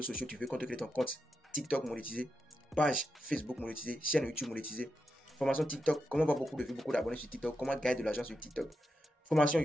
sociaux, tu veux créer ton compte TikTok monétisé, page Facebook monétisée, chaîne YouTube monétisée, formation TikTok, comment avoir beaucoup de vues, beaucoup d'abonnés sur TikTok, comment gagner de l'argent sur TikTok, formation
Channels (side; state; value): both; normal; correlation 0.87